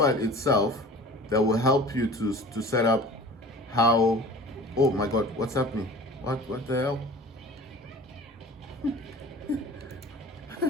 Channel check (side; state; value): both; normal; correlation 0.42